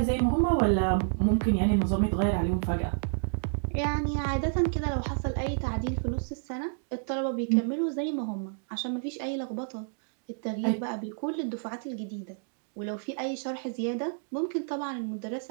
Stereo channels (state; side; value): silent; left; digital silence